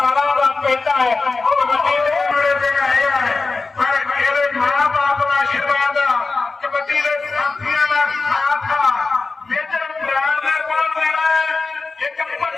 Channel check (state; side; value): quieter; right; 3.9 dB